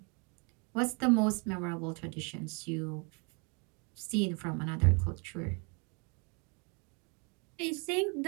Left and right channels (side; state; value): left; quieter; 34.3 dB